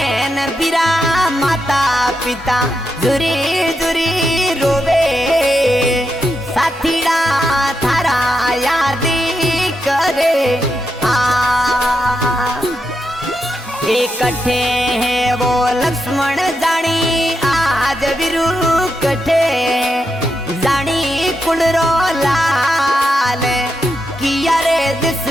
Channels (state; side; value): normal; both; correlation 0.85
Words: बिरा माता पिता जुरी जुरी रोवे साथीड़ा थारा यादी करे इकट्ठे है वो लक्ष्मण जानी आज बिरु कठे जानी कुड़रो लाल किया रे